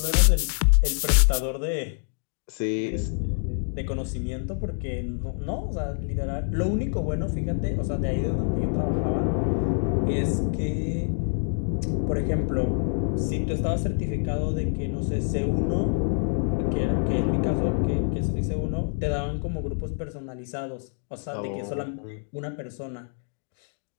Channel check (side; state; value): right; silent; 59 dB below the other